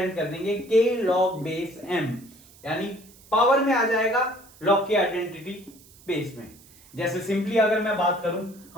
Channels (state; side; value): noise; right; hiss, 25 dB below the sound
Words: कर देंगे के लॉग बेस m, यानी पावर में आ जाएगा लॉग की आइडेंटिटी बेस में। जैसे सिंपली अगर मैं बात करूं,